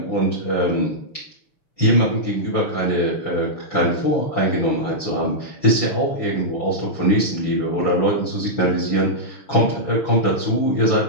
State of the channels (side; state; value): right; late; 5.9 ms